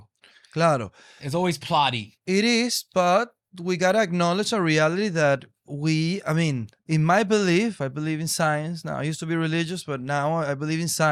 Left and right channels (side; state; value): both; identical; correlation 1.00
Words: Claro. It's always plotty. It is, but we gotta acknowledge a reality that in my belief, I believe in science. Now, I used to be religious, but now I believe in